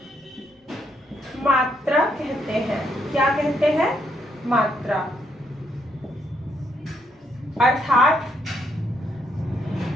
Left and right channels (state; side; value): normal; both; correlation 0.75